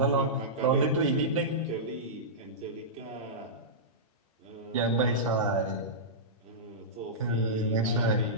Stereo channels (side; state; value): both; normal; correlation -0.15